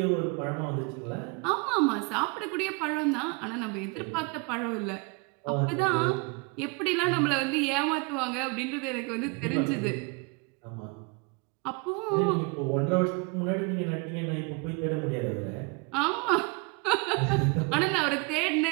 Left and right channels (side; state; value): left; quieter; 29.5 dB